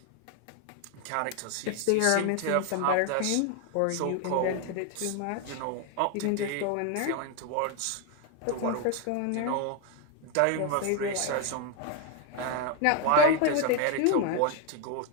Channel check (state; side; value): different; both; correlation 0.01